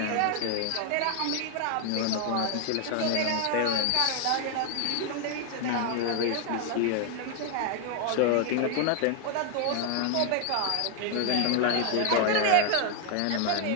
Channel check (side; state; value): both; different; correlation 0.00